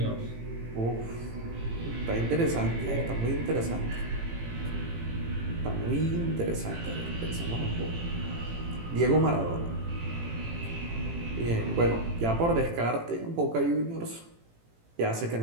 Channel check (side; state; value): left; late; 18 ms